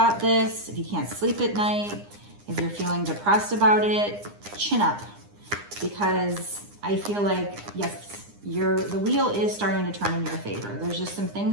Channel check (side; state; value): left; late; 9.8 ms